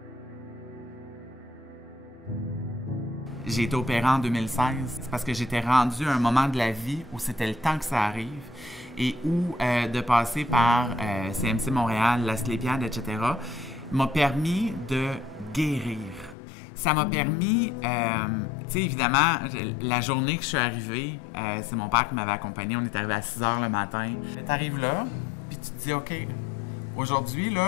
J'ai été opérée en 2016. C'est parce que j'étais rendue à un moment de la vie où c'était le temps que ça arrive et où de passer par CMC Montréal, la Asclépiade, etc., m'a permis de guérir. Ça m'a permis, tu sais, évidemment, la journée que je suis arrivée, c'est mon père qui m'avait accompagné. On est arrivé à 6 h le matin. Tu arrives là, puis tu te dis, OK, aujourd'hui,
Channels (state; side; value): drops out; right; at 16.4 s